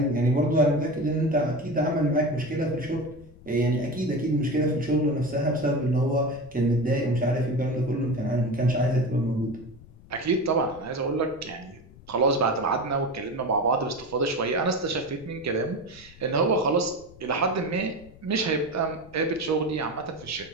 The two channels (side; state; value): left; noise; rumble, 22 dB below the sound